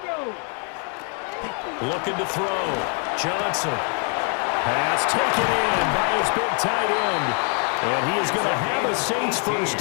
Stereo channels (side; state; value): right; quieter; 39.2 dB